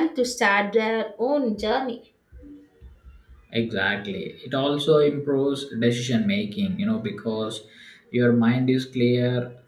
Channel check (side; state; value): both; identical; correlation 1.00